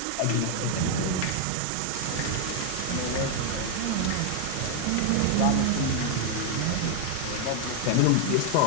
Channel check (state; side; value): different; both; correlation 0.00